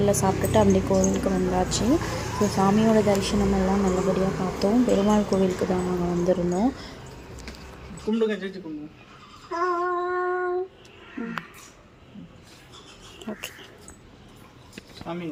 சாப்பிட்டுட்டு அப்படியே கோவிலுக்கு வந்தாச்சு. ஸோ சாமியோட தரிசனம் எல்லாம் நல்லபடியாக பார்த்தோம். பெருமாள் கோவிலுக்கு தான் நாங்கள் வந்திருந்தோம். கும்பிடுங்க, சேர்த்து கும்பிடுங்க. ஓகே சாமி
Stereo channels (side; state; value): both; identical; correlation 1.00